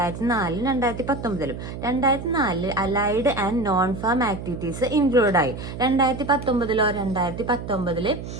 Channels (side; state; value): right; noise; hum, 9 dB below the sound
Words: 2019. 2004 allied and non farm activities include ആയി. 2019